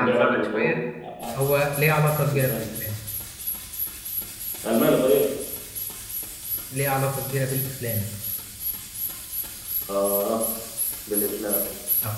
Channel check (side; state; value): both; identical; correlation 1.00